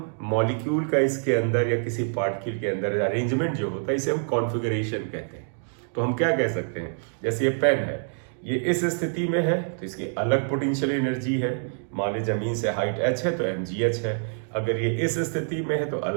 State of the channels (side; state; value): left; silent; digital silence